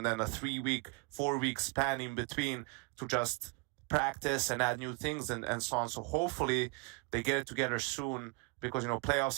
then a 3-week, 4-week span in between to just practice and add new things and so on. So hopefully they get it together soon because, you know,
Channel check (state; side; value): quieter; left; 29.3 dB